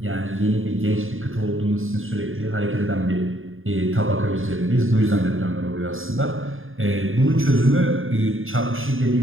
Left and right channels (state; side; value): late; left; 0.59 ms